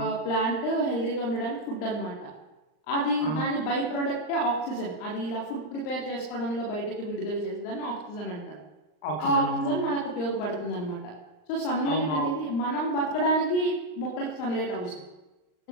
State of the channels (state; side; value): late; right; 39 ms